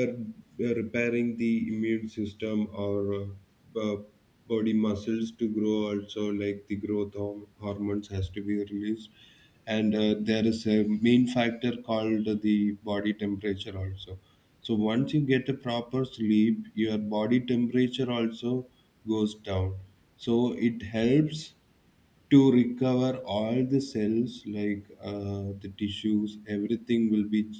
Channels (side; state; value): both; identical; correlation 1.00